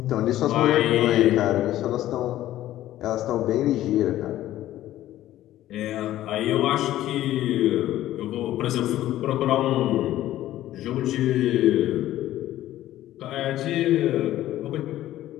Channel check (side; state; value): right; quieter; 13.9 dB